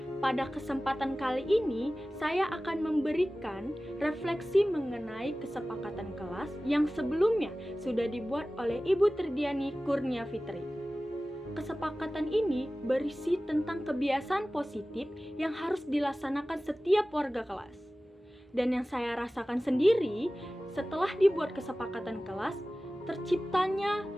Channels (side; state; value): both; normal; correlation 0.97